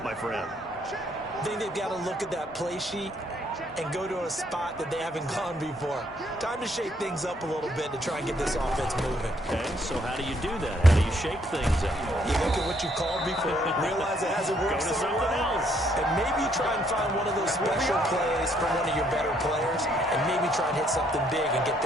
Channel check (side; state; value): both; normal; correlation 0.69